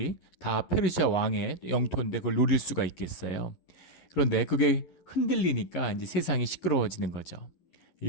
다 페르시아 왕의 영토인데 그걸 노릴 수가 있겠어요. 그런데 그게 흔들리니까 이제 세상이 시끄러워지는 거죠.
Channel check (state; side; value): late; right; 11 ms